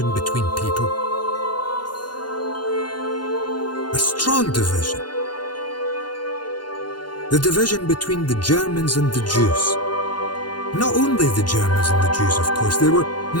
between people? A strong division. The division between the Germans and the Jews. Not only the Germans and the Jews, of course, there were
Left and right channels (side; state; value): right; late; 0.71 ms